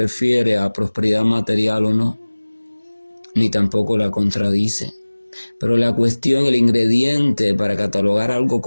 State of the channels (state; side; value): inverted; both; correlation -1.00